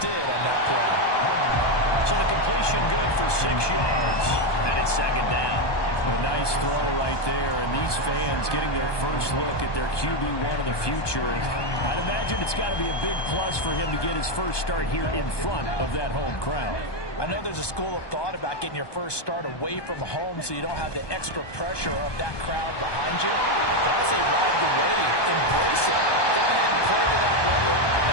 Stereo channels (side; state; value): right; late; 1.2 ms